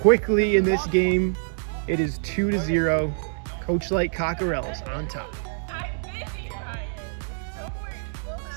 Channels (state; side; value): silent; left; digital silence